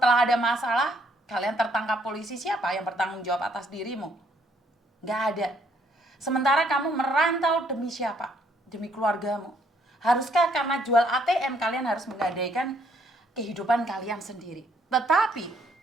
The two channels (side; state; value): both; normal; correlation 0.68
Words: ada masalah, kalian tertangkap polisi, siapa yang bertanggung jawab atas dirimu? Gak ada. Sementara kamu merantau demi siapa? demi keluargamu? Haruskah karena jual ATM kalian harus menggadaikan kehidupan kalian sendiri? Tetapi